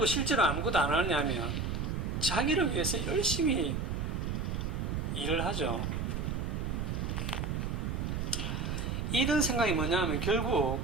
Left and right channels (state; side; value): noise; right; rumble, 1 dB below the sound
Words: 실제로 아무것도 안 하냐면 자기를 위해서 열심히 일을 하죠. 이런 생각이 뭐냐면 결국